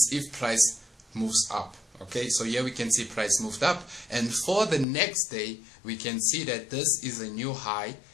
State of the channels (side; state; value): right; drops out; at 4.9 s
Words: if price moves up. Okay, so here we can see price moved up, and for the next day we can see that this is a new high